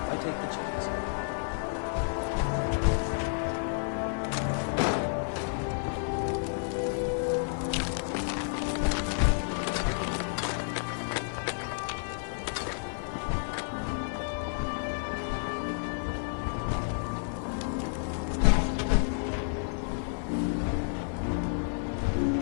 I take the chance.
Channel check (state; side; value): silent; right; digital silence